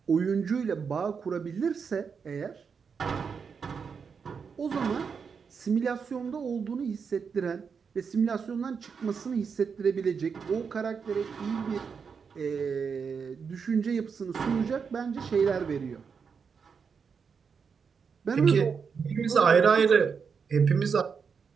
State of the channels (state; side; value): quieter; left; 6.0 dB